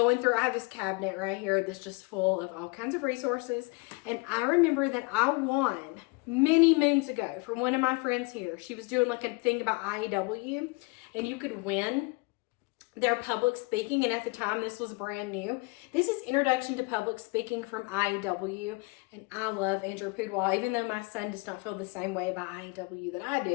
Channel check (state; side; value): quieter; right; 27.7 dB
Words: through, I have this cabinet right here that's just full of all kinds of resources. And I remember that I won many moons ago from one of my friends here. She was doing like a thing about IEW, and you could win their public speaking, and at the time this was brand new. This is Introduction to Public Speaking from IEW, and I love Andrew Pudwall, even though my son does not feel the same way about IEW that I